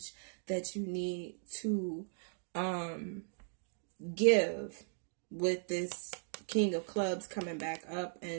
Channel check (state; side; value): silent; left; digital silence